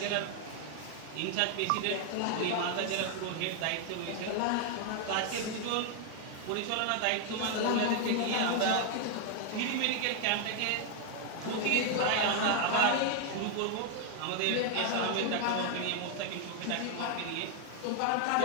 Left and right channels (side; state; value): both; different; correlation 0.00